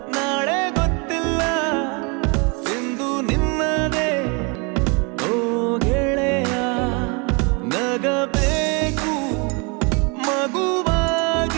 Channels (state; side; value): quieter; left; 31.8 dB